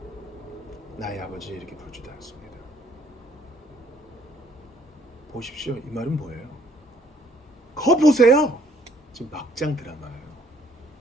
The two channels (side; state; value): both; normal; correlation 0.63